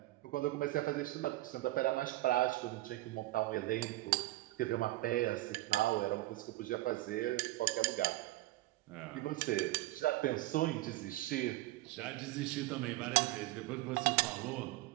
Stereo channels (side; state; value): left; quieter; 18.0 dB